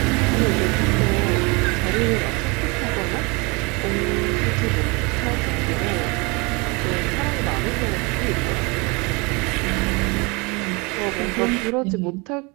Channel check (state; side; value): quieter; left; 28.2 dB